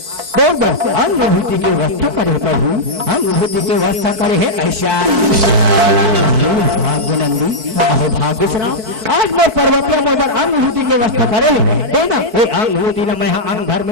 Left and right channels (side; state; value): left; late; 4.6 ms